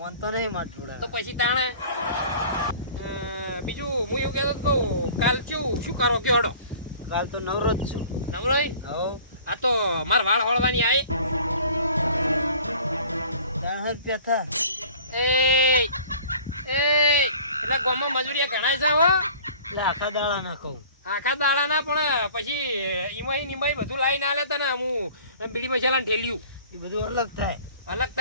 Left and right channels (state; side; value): inverted; both; correlation -0.48